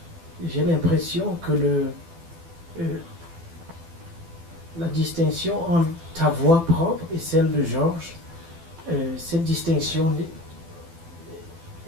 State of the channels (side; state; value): left; late; 12 ms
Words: j'ai l'impression que la distinction entre ta voix propre et celle de Georges, cette distinction,